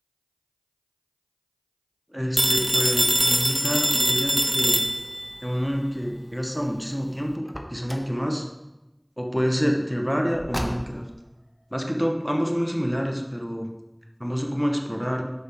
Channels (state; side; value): identical; both; correlation 1.00